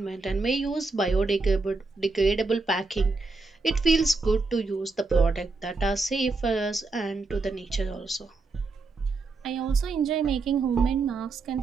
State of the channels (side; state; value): left; quieter; 3.8 dB